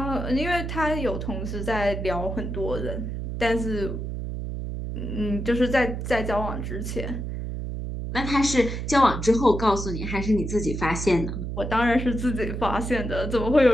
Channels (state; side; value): noise; right; hum, 5 dB below the sound